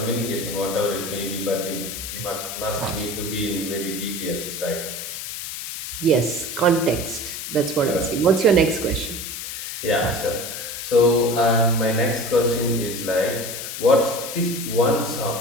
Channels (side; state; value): left; noise; hiss, 7 dB below the sound